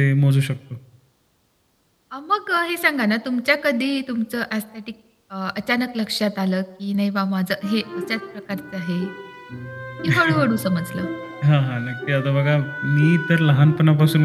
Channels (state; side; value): identical; both; correlation 1.00